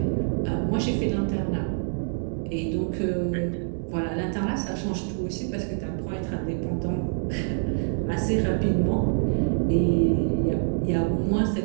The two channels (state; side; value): silent; left; 61 dB below the other